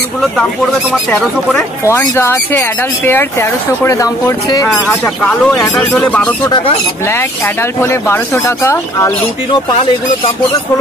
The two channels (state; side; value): normal; both; correlation 0.58